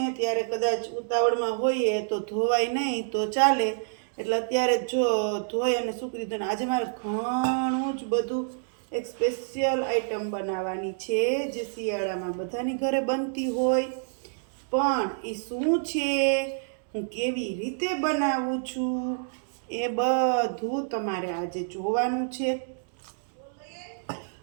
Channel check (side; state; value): left; silent; digital silence